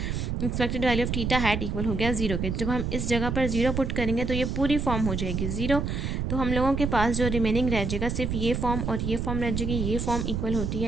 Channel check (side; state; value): right; noise; rumble, 2 dB below the sound